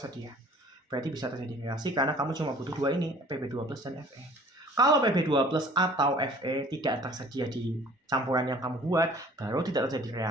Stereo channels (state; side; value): normal; both; correlation 0.51